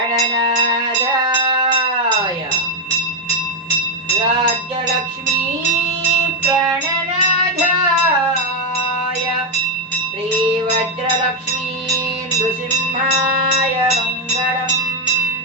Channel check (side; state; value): both; normal; correlation 0.03